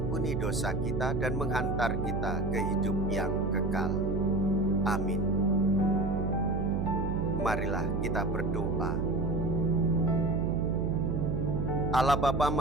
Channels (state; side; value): noise; right; hum, 2 dB below the sound